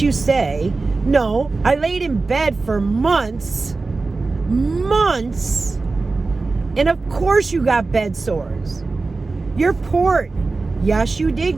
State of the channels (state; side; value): quieter; left; 3.7 dB